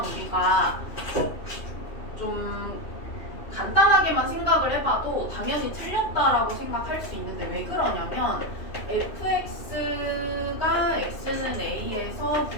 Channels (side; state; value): right; late; 2.9 ms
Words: 우리가 좀 간단하게만 생각을 해봐도 당연히 틀렸다라고 생각할 수 있는데 왜 그러냐면 fx가 x는 a에서